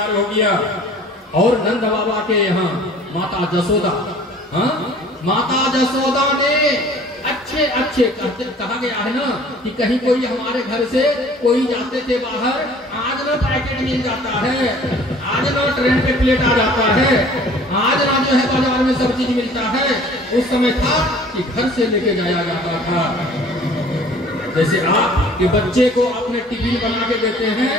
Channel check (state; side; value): normal; both; correlation 0.50